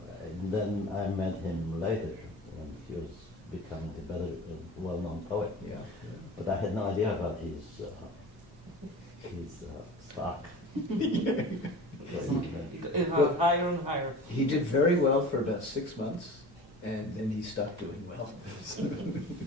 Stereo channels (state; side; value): normal; both; correlation 0.37